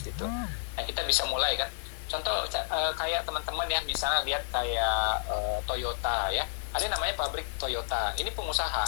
gitu. Nah kita bisa mulai kan, contoh kayak teman-teman ya, misalnya lihat kayak Toyota ya, ada yang namanya pabrik Toyota, ini pengusaha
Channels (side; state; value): right; silent; 57 dB below the other